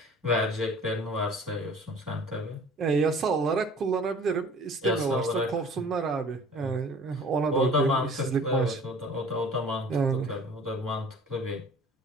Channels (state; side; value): normal; both; correlation 0.48